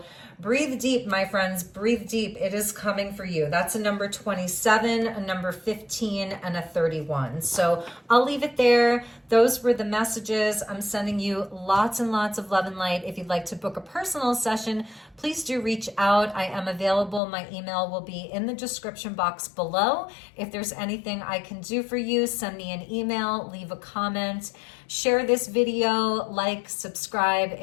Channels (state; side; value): drops out; right; at 17.2 s